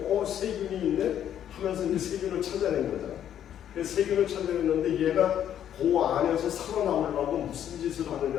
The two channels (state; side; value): quieter; right; 10.2 dB